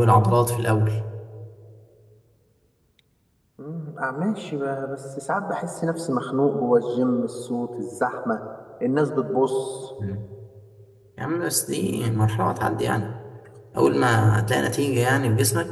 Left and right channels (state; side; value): identical; both; correlation 1.00